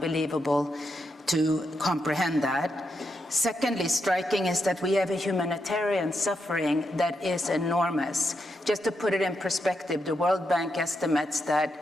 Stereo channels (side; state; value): both; normal; correlation 0.83